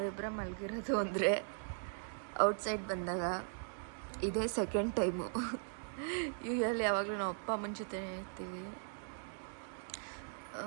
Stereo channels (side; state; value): left; silent; digital silence